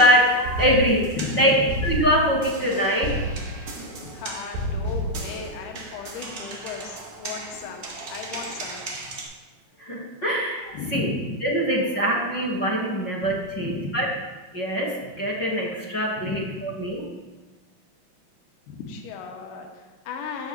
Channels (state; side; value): late; right; 5.5 ms